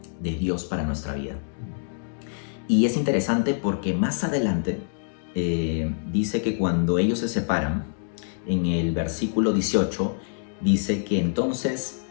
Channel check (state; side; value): silent; right; digital silence